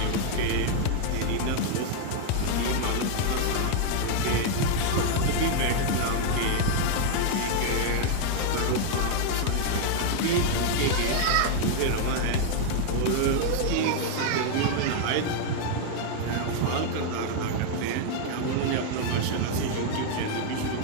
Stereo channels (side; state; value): both; different; correlation 0.00